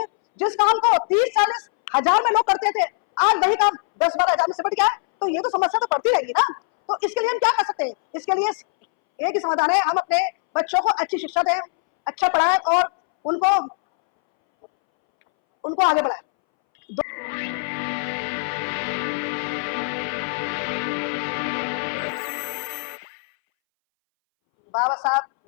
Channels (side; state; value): right; silent; 63 dB below the other